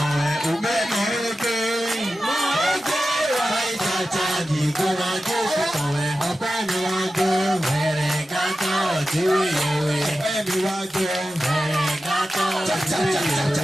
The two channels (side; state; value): both; normal; correlation 0.93